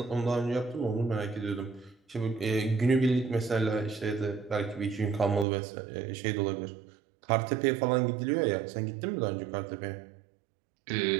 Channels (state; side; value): drops out; left; at 5.5 s